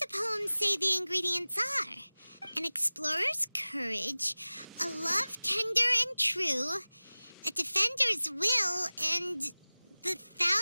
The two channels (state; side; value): inverted; both; correlation -0.99